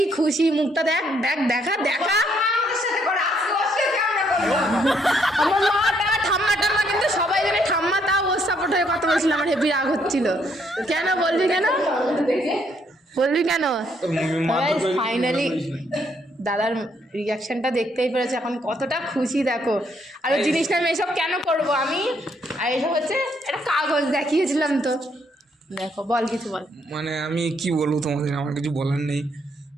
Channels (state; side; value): normal; both; correlation 0.71